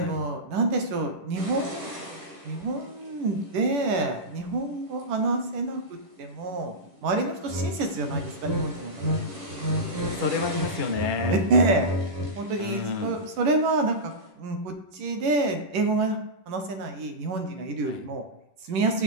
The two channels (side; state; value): left; late; 10 ms